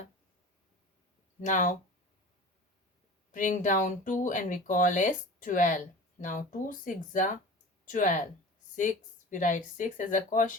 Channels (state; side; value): normal; both; correlation 0.37